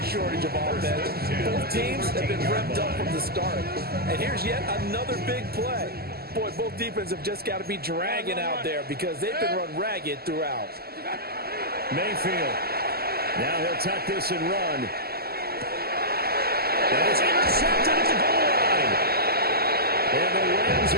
of offense. Both teams have been revved up from the start. And here's yet another big play. Boy, both defenses have just got to be dragging out there because they've been run ragged throughout. Mayfield. Now he'll tuck this and run. And it's intercepted at the goal line. And the Rams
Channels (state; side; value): late; left; 0.45 ms